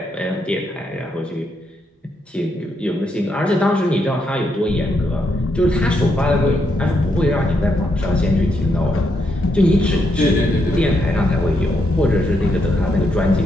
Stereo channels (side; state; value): both; normal; correlation 0.79